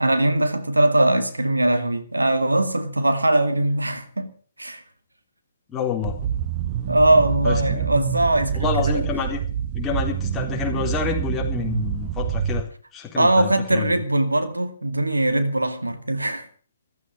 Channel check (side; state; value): both; inverted; correlation -0.80